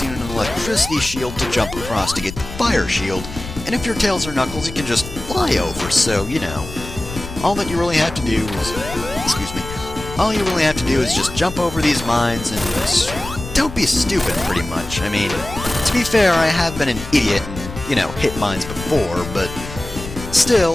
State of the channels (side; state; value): left; noise; rumble, 11 dB below the sound